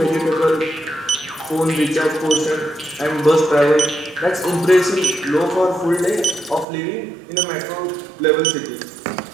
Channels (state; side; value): drops out; left; at 6.7 s